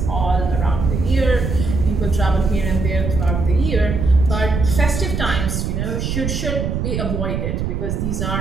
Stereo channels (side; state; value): right; noise; rumble, 2 dB below the sound